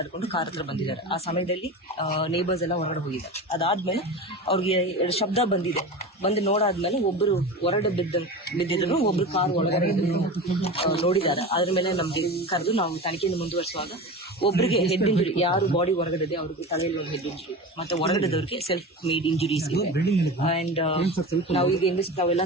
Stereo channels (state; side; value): normal; both; correlation 0.29